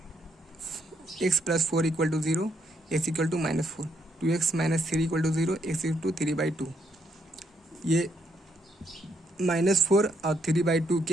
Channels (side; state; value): both; normal; correlation 0.74